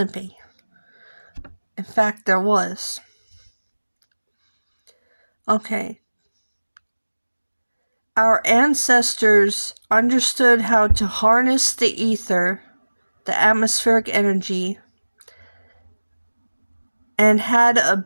be. In fact, there was. Okay. Our ancestors understood how to harness the ether, the atmospheric energy, and had a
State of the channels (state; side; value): inverted; both; correlation -1.00